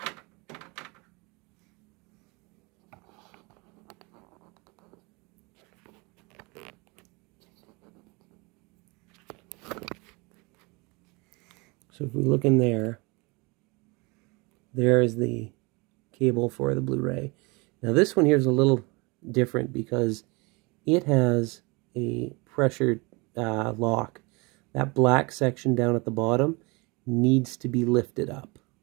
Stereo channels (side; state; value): left; quieter; 27.4 dB